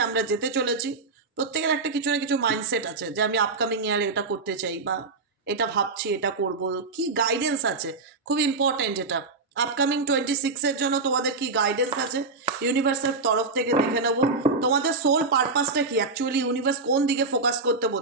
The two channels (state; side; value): quieter; left; 3.9 dB